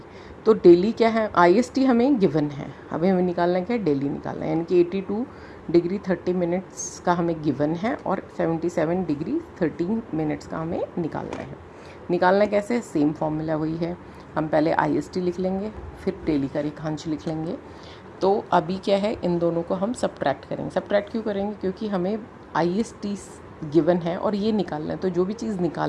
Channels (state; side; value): identical; both; correlation 1.00